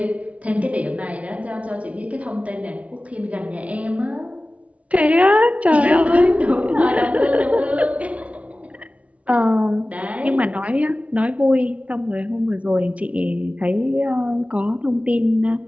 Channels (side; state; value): left; late; 0.065 ms